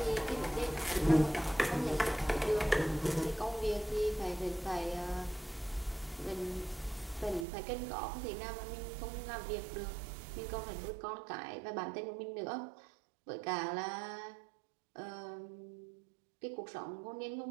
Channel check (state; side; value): drops out; left; at 7.5 s